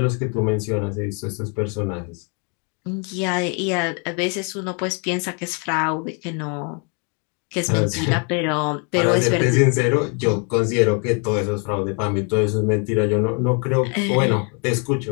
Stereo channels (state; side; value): quieter; right; 37.3 dB